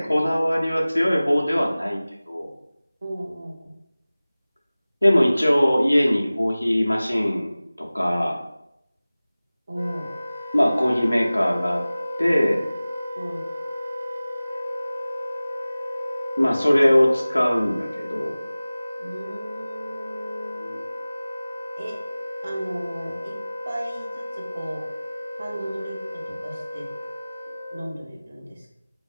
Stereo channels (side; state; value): both; inverted; correlation -0.98